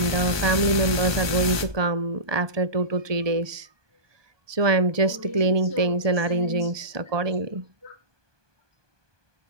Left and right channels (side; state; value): left; late; 1.2 ms